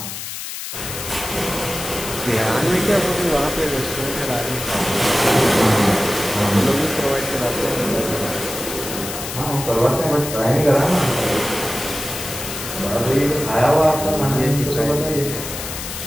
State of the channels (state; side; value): noise; left; hiss, 8 dB below the sound